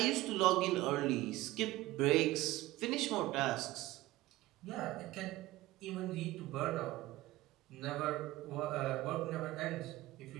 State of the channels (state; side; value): quieter; left; 17.4 dB